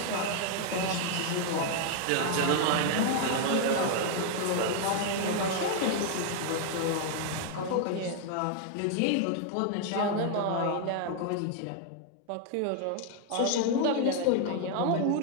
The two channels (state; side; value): different; both; correlation 0.00